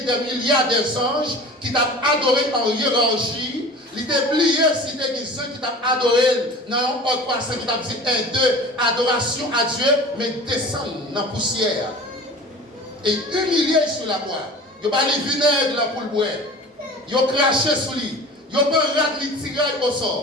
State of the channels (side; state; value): both; normal; correlation 0.39